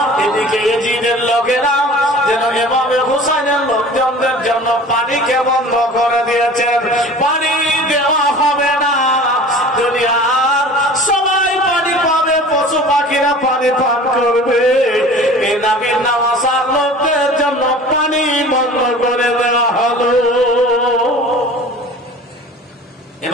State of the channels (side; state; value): both; normal; correlation 0.42